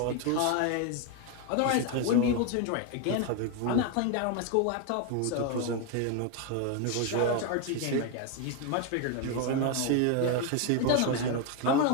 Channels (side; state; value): both; different; correlation 0.01